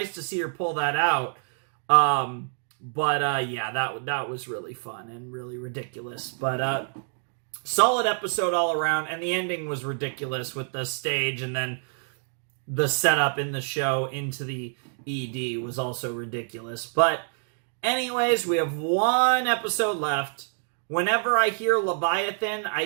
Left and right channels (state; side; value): silent; left; 60 dB below the other